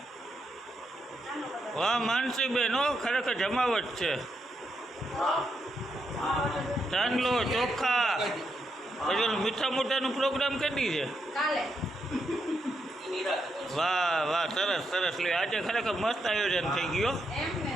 વાહ માનસી બેન હો ખરેખર જમાવટ છે ચાંદલો ચોખા પછી ઓલું મીઠા મોટાનો પ્રોગ્રામ કરી છે કાલે વાહ વાહ સરસ સરસ લે આજે ખરેખર મસ્ત આયોજન થઈ ગયો એમ ને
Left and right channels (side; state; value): both; normal; correlation 0.81